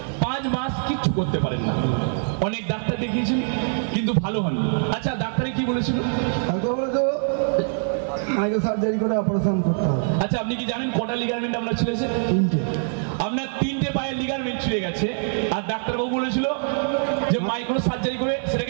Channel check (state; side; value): silent; left; 60 dB below the other